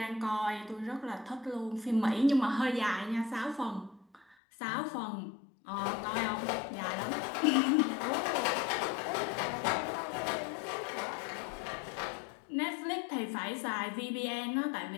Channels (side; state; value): right; drops out; at 4.4 s